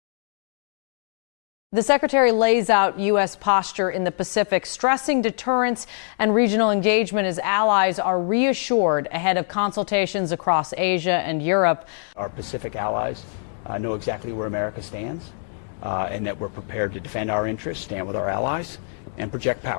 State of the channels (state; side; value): silent; right; digital silence